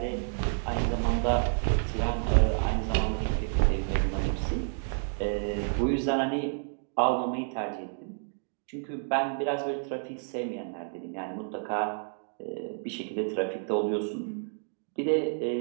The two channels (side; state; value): left; silent; digital silence